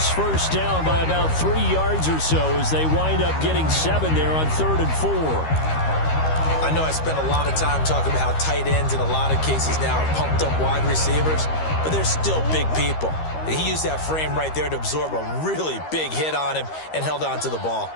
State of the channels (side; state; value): right; late; 13 ms